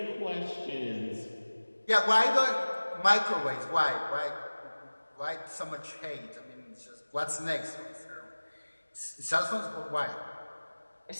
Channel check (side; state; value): both; inverted; correlation -1.00